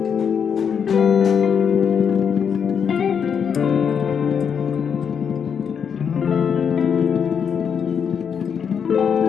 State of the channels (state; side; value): quieter; right; 7.2 dB